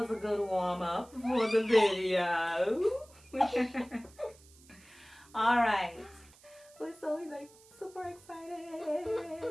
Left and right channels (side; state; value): right; noise; hiss, 25 dB below the sound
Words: a good warm-up for the video. Alright. We're so like super